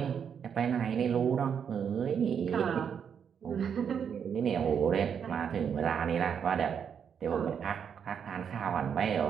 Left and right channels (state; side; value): quieter; left; 7.5 dB